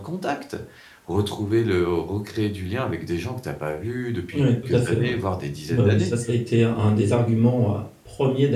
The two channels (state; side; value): identical; both; correlation 1.00